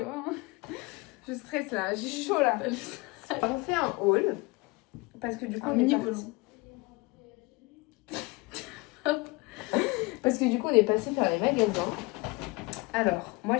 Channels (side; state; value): right; quieter; 25.1 dB